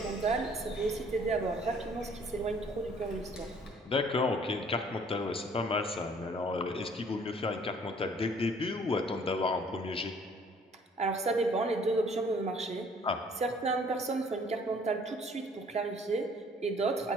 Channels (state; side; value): normal; both; correlation 0.58